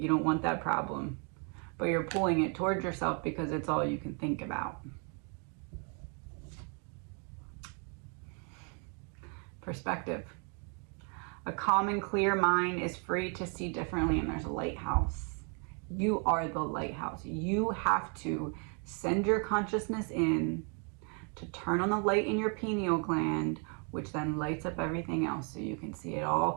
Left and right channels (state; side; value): quieter; left; 38.4 dB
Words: You don't want that problem, but you're pulling it towards yourself because it's all you can think about. Perspective. A calm and clear mind is free to see differently, and there's a lighthouse. You are the lighthouse. You have to send your consciousness in to turn on the light in your pineal gland, which then lights up everything else so you can see it all